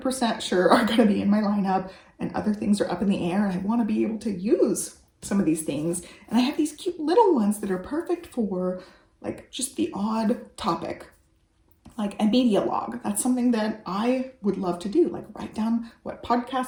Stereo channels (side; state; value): both; identical; correlation 1.00